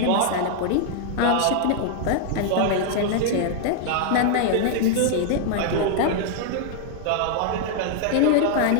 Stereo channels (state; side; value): different; both; correlation -0.01